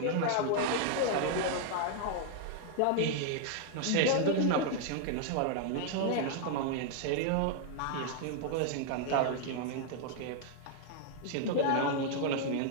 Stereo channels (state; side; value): different; both; correlation 0.00